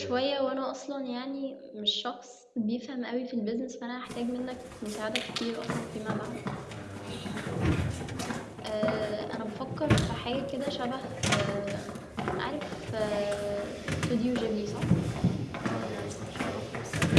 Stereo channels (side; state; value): both; identical; correlation 1.00